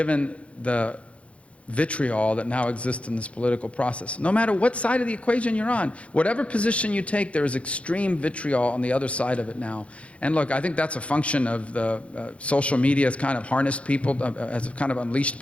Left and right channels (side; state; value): right; late; 0.062 ms